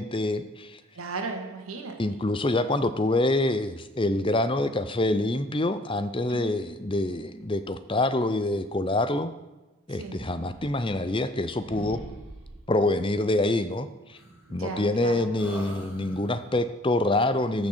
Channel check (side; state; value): both; normal; correlation 0.57